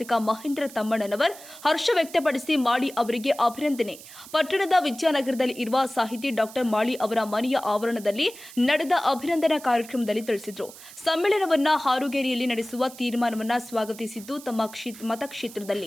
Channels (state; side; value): noise; right; hiss, 17 dB below the sound